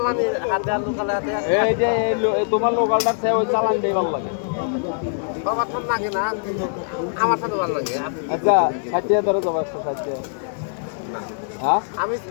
হাতে আর লোকালে হাতে এই যে তোমার লোকালটার চেয়ে ওই চালান দেই ভালো লাগে বাবা ঠান্ডা লাগে না কিন্তু আমার সাথে ভালো লাগে আচ্ছা 60 ধরে যাবো 160 হ্যাঁ আমি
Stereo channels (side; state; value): right; silent; 62 dB below the other